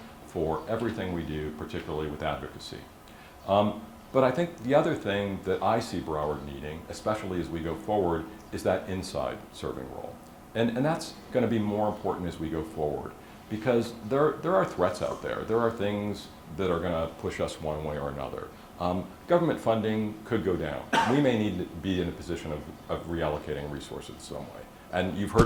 for everything we do, particularly with advocacy. But I think the other thing that I see Broward needing, especially as we go forward, is that inside serving role. And that's going to be more important as we go forward, because there are threats out there. There are things that are going to push us one way or another. Government funding could go down. We may need to be in a position of reallocating resources some way. And you've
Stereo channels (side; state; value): both; identical; correlation 1.00